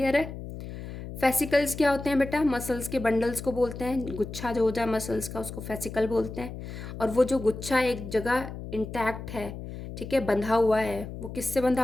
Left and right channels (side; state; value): left; noise; hum, 10 dB below the sound